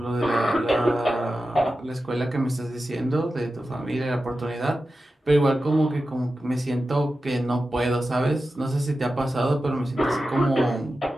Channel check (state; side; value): normal; both; correlation 0.92